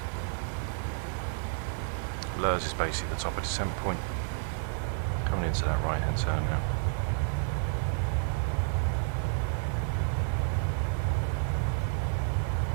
Lurs is basically the top of descent point. Coming into that right hand turn now.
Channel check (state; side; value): silent; left; digital silence